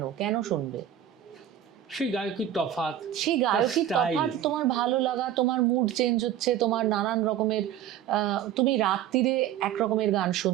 কেন শুনবে? সেই গায়কির তফাৎ, তোমার ভালো লাগা, তোমার মুড চেঞ্জ হচ্ছে, তোমার নানান রকমের, তুমি রাত্রিরে এক রকমের গান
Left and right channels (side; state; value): left; quieter; 10.8 dB